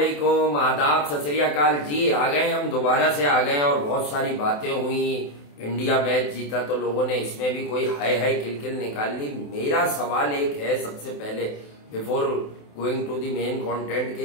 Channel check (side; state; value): right; late; 28 ms